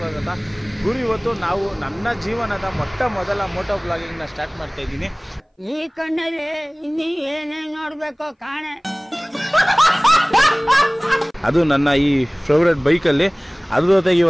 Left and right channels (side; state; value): both; identical; correlation 1.00